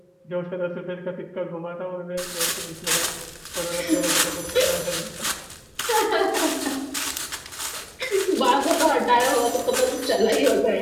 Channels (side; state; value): both; identical; correlation 1.00